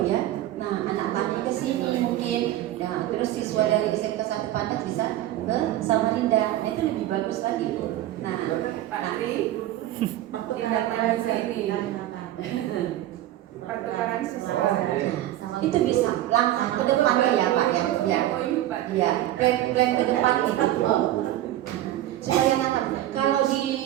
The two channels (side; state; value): left; quieter; 13.8 dB